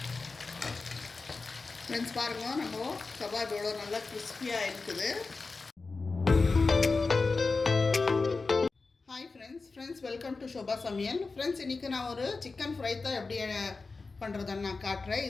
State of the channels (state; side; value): quieter; right; 4.0 dB